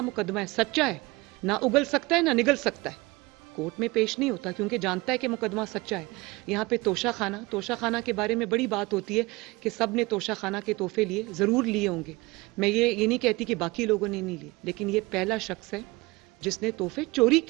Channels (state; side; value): quieter; left; 23.0 dB